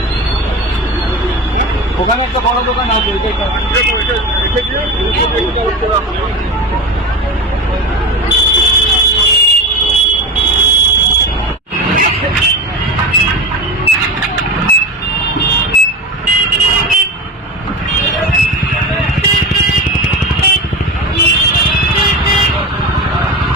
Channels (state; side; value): normal; both; correlation 0.25